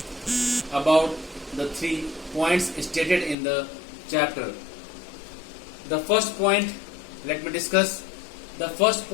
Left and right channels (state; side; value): drops out; right; at 3.4 s